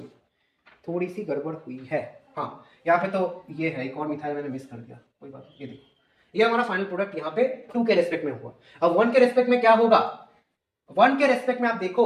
थोड़ी सी गड़बड़ हुई है, हाँ यहाँ पे तो ये है, एक और मिथाइल मैंने मिस कर दिया, कोई बात नहीं, ये देखो ये हमारा फाइनल प्रोडक्ट यहाँ पे 2 के रेस्पेक्ट में हुआ। अब 1 के रेस्पेक्ट में क्या होगा, 1 के रेस्पेक्ट में आप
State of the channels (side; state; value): both; identical; correlation 1.00